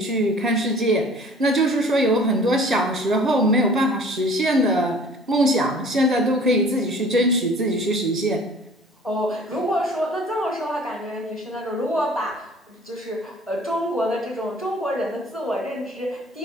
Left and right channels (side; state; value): both; normal; correlation 0.49